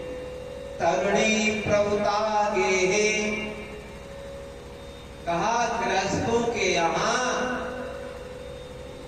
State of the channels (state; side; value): identical; both; correlation 1.00